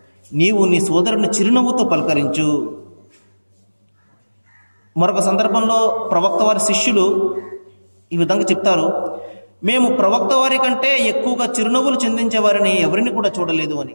నీవు నీ సోదరుని చిరునవ్వుతో పలకరించు. మరొక సందర్భంలో ప్రవక్త వారి శిష్యులు ఈ విధంగా చెప్తారు, మేము ప్రవక్త వారి కంటే ఎక్కువగా చిరునవ్వులు చిందించే వారిని ఎవరిని కూడా చూడలేదు అని.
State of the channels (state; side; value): inverted; both; correlation -1.00